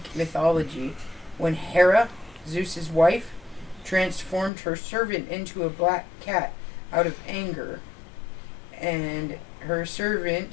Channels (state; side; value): drops out; right; at 4.5 s